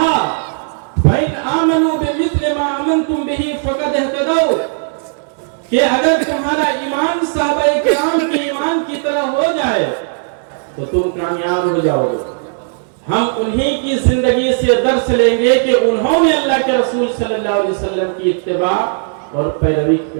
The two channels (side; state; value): left; silent; digital silence